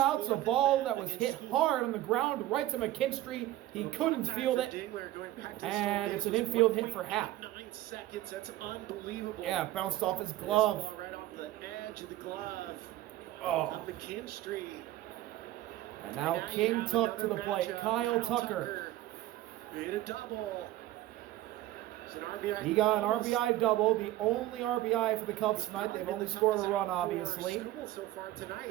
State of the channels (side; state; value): left; quieter; 14.7 dB